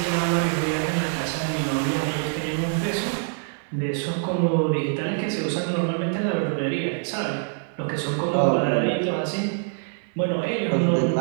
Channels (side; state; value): left; silent; 62 dB below the other